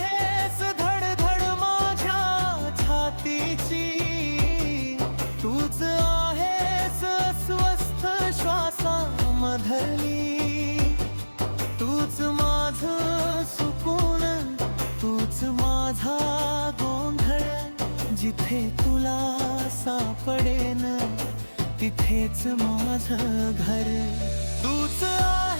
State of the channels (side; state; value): both; inverted; correlation -1.00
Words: धडधड माझ्या छातीची, तूच आहेस अस्वस्थ श्वासामधली, तूच माझं सुकून, तूच माझा गोंधळ, जिथे तुला सापडेन तिथेच माझं घर, तूच